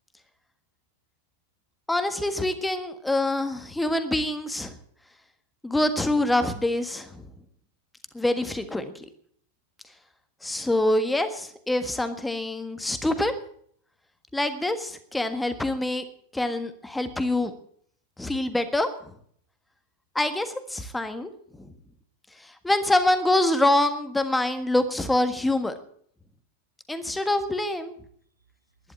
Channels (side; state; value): both; normal; correlation 0.86